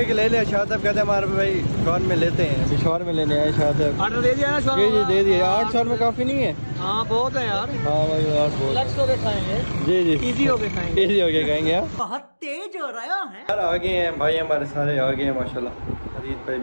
ले लिया। शाह साहब कहते हैं हमारे भाई शॉर में लेते हैं, अभी शॉर में लेने आए। शाह साहब ऑर्डर दे दिया ना? जी जी दे दिया। 8 शॉर में काफ़ी नहीं है? हाँ बहुत है यार। हाँ भाई 8 बहुत। रिलैक्स होके खाएंगे। जी जी, इजी होके खाएंगे, इजी होके खाएंगे। आप बहुत तेज हो रहा है यार, आ गए हैं भाई हमारे सारे, आ गए हैं माशाल्लाह। अजीत भाई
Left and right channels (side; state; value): both; inverted; correlation -1.00